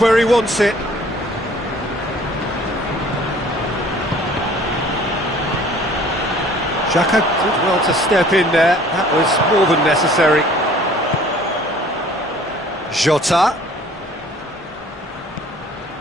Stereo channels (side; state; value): both; normal; correlation 0.53